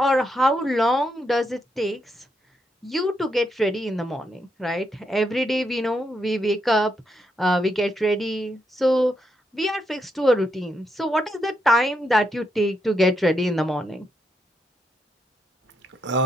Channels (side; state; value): both; normal; correlation 0.80